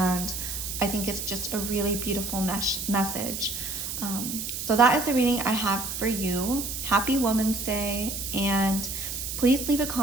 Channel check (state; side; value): noise; right; hiss, 5 dB below the sound